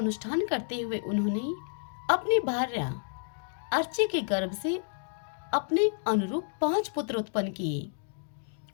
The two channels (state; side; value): silent; right; digital silence